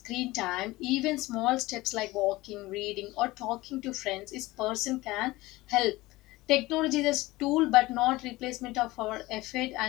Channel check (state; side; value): quieter; right; 19.6 dB